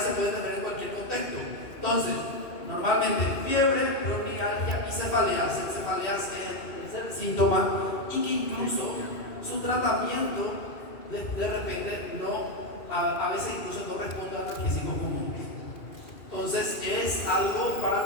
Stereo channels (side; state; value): right; late; 2.7 ms